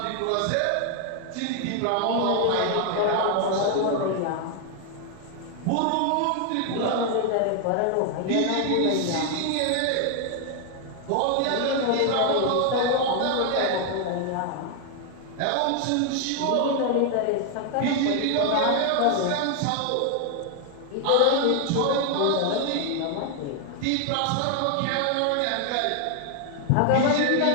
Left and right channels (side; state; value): both; different; correlation 0.00